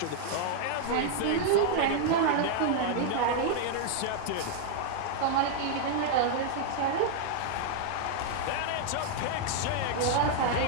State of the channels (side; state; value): both; different; correlation 0.00